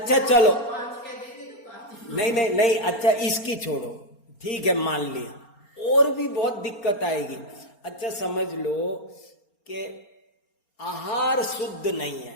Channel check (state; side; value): late; right; 4.3 ms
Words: चलो, नहीं नहीं नहीं, अच्छा इसकी छोड़ो, ठीक है मान लिया, और भी बहुत दिक्कत आएगी। अच्छा समझ लो कि आहार शुद्ध नहीं